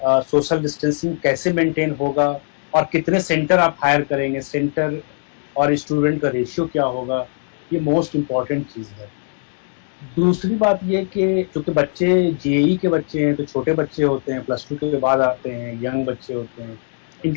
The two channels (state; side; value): silent; right; digital silence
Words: डिस्टेंसिंग कैसे मेंटेन होगा और कितने सेंटर आप हायर करेंगे, सेंटर और स्टूडेंट का रेशियो क्या होगा, ये मोस्ट इम्पॉर्टेंट चीज़ है। दूसरी बात ये कि चूँकि बच्चे जेई के बच्चे हैं, तो छोटे बच्चे होते हैं, +2 के बाद आते हैं, यंग बच्चे होते हैं,